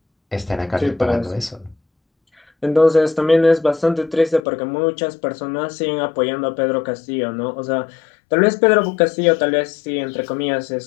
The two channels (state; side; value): drops out; right; at 4.4 s